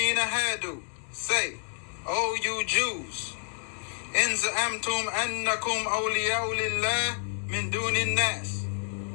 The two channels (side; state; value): right; silent; digital silence